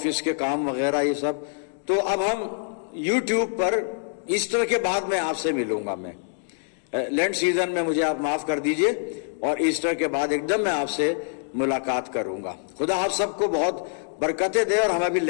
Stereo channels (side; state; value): right; silent; digital silence